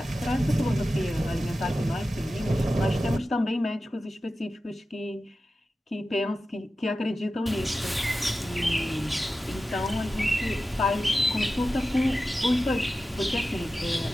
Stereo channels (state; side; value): normal; both; correlation 0.93